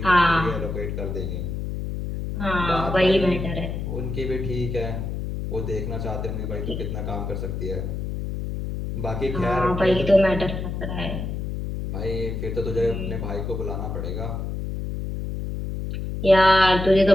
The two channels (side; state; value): left; noise; hum, 4 dB below the sound